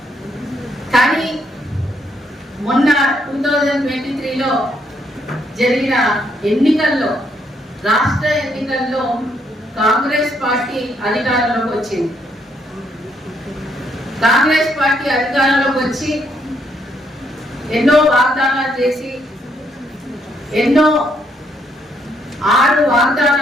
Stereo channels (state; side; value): normal; both; correlation 0.73